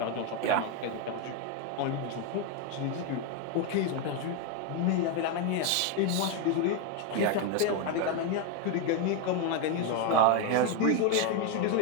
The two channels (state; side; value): different; both; correlation 0.02